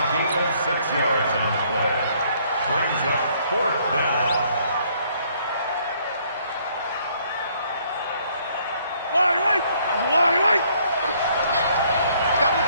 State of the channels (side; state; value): both; inverted; correlation -0.65